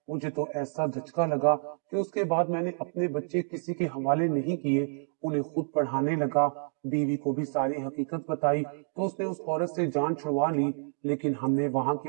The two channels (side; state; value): left; silent; digital silence